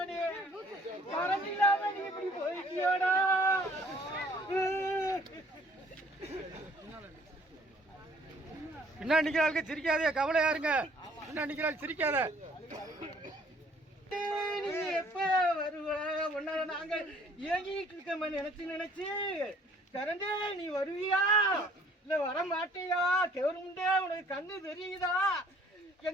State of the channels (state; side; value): normal; both; correlation 0.58